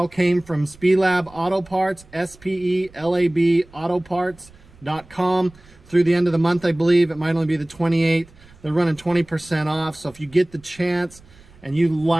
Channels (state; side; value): noise; right; rumble, 25 dB below the sound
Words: came from Spelab Auto Parts, SPELAB Autoparts.com. Through the end of the month, I believe. It might only be the 28th. They're running 20% off. So if you get the chance and you